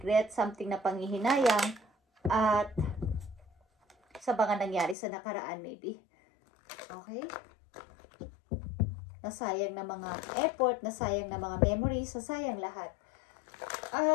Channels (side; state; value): right; drops out; at 5.0 s